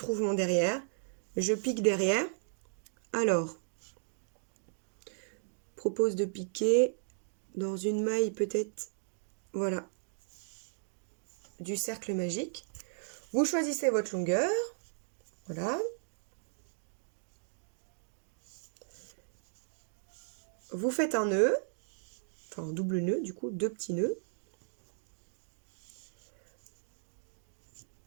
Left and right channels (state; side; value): silent; left; digital silence